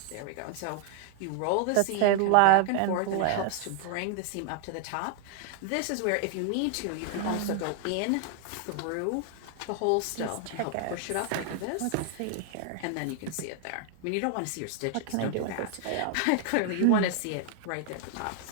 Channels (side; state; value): both; different; correlation 0.00